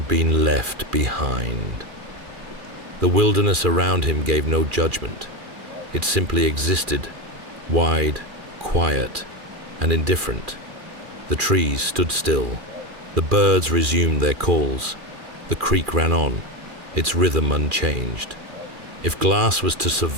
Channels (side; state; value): left; late; 2.4 ms